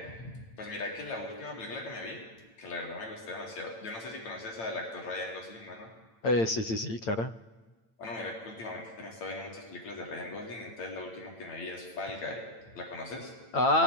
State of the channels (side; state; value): right; late; 8.9 ms